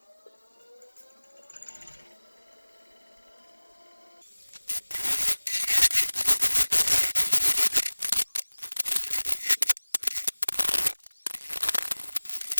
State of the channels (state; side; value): inverted; both; correlation -1.00